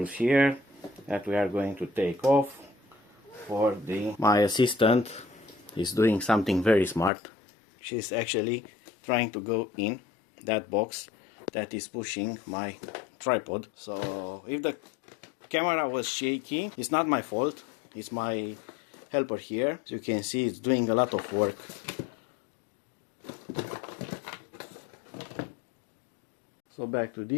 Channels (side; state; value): right; drops out; at 7.1 s